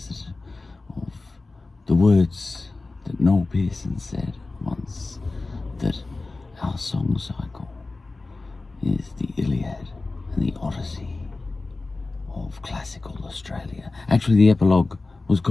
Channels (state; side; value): quieter; right; 3.4 dB